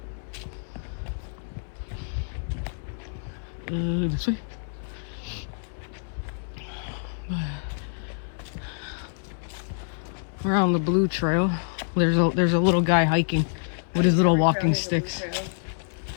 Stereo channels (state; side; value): silent; right; 60 dB below the other